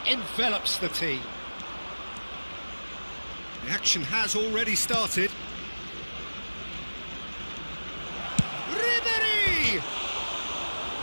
envelops the team. The action has already started. Ribery!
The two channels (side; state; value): both; inverted; correlation -1.00